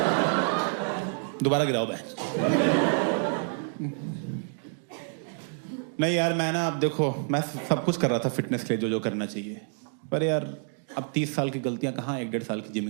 दोबारा गिराओ बहन। नहीं यार, मैं ना, अब देखो, मैं सब कुछ कर रहा था फिटनेस के लिए, जो करना चाहिए, पर यार अब 30 साल की गलतियां कहाँ 1-1.5 साल की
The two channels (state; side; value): silent; left; 59 dB below the other